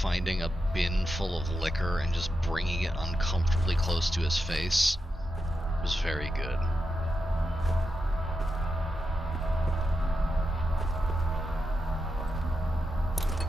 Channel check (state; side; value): normal; both; correlation 0.87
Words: a bin full of liquor and just bringing it uncomfortably close to his face was very good.